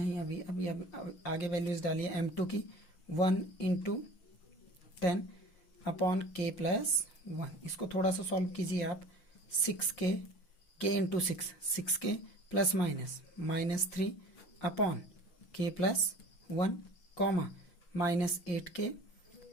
अभी आगे वैल्यूज डालिए m2 की, 1 इंटू 10 अपॉन k प्लस 1। इसको थोड़ा सा सॉल्व कीजिए आप, 6k k into 6k plus -3 upon k plus 1, comma -8k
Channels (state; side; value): late; right; 5.6 ms